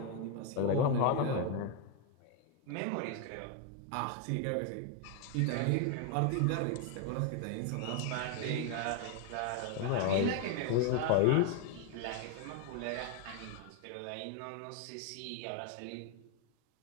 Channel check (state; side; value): different; both; correlation 0.01